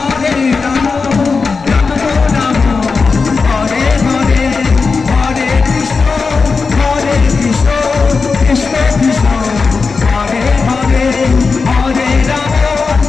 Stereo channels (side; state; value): right; quieter; 4.6 dB